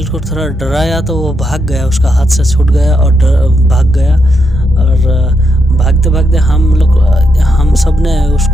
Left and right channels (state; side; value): normal; both; correlation 0.81